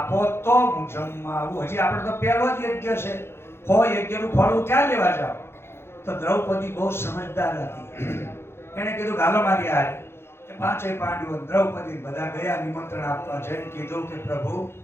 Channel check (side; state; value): right; late; 0.12 ms